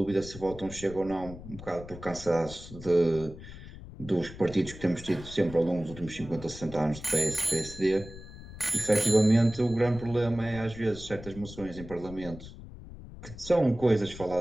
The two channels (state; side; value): noise; left; rumble, 14 dB below the sound